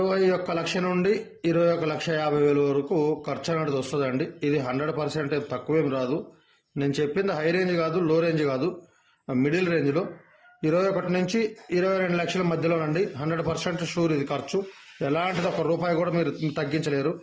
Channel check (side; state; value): both; identical; correlation 1.00